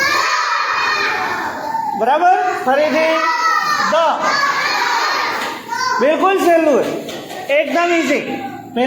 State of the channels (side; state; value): both; identical; correlation 1.00